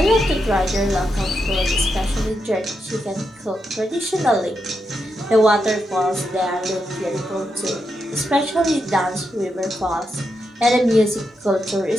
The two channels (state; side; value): normal; both; correlation 0.84